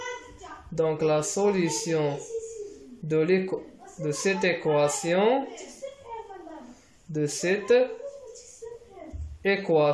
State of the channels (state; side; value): identical; both; correlation 1.00